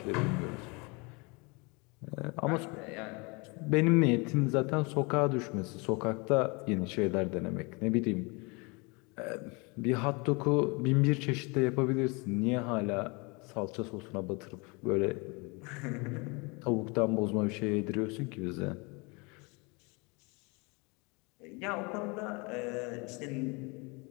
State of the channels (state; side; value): quieter; right; 29.1 dB